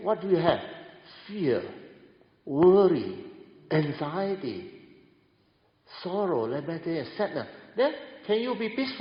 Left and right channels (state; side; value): identical; both; correlation 1.00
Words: what do you have? Fear, worry, anxiety, sorrow, lamentation, sadness. Then can you be